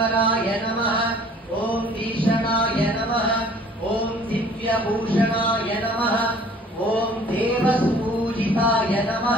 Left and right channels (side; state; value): both; normal; correlation 0.53